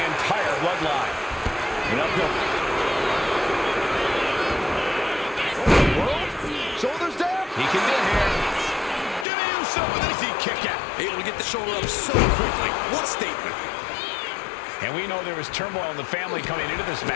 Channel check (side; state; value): right; drops out; at 9.2 s